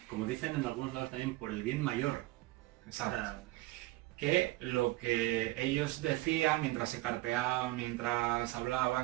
Como dicen en algunos lados también, por el bien mayor. Exacto. Que lo que ellos decían mientras se carteaban, mientras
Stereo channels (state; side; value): quieter; left; 19.1 dB